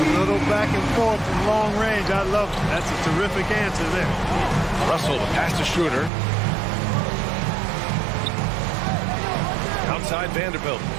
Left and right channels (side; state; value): left; drops out; at 6.1 s